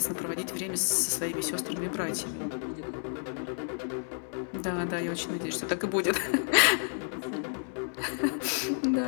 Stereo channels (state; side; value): silent; right; 57 dB below the other